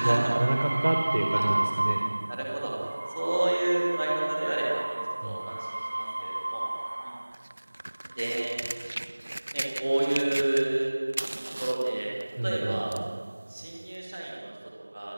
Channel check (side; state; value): both; inverted; correlation -1.00